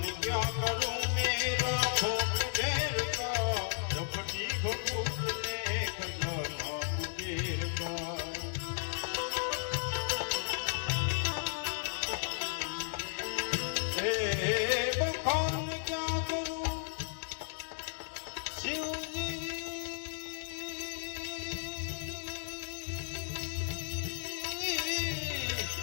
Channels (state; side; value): silent; right; digital silence